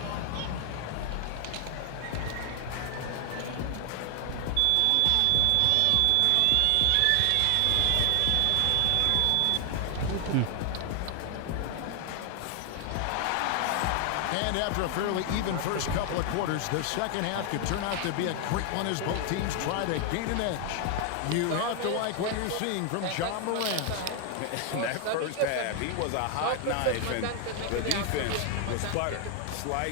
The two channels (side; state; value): both; different; correlation 0.00